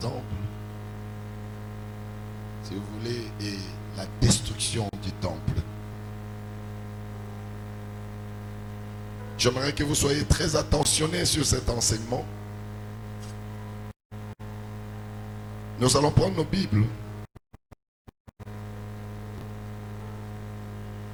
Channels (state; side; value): identical; both; correlation 1.00